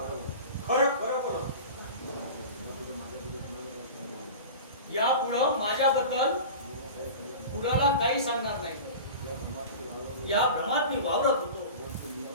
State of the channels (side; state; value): both; inverted; correlation -0.34